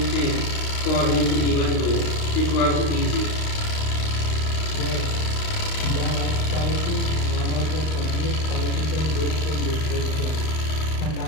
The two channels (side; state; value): right; late; 38 ms